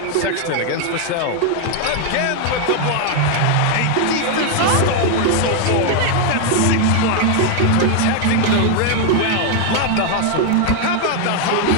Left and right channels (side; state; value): both; different; correlation 0.01